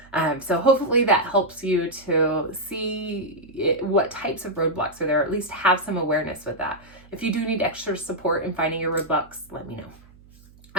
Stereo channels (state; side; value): noise; right; hum, 25 dB below the sound